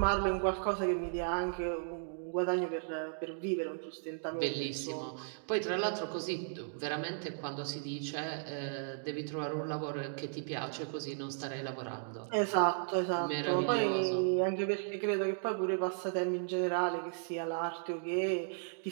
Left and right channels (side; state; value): left; silent; digital silence